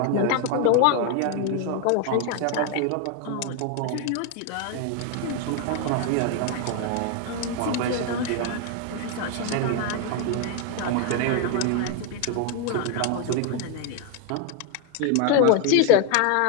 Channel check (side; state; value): both; different; correlation 0.01